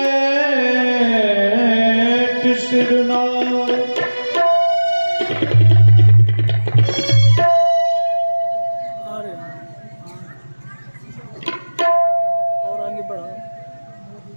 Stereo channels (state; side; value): inverted; both; correlation -1.00